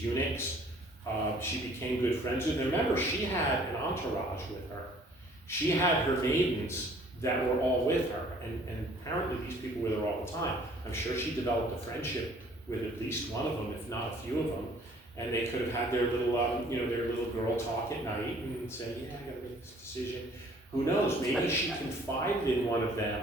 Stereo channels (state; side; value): normal; both; correlation 0.56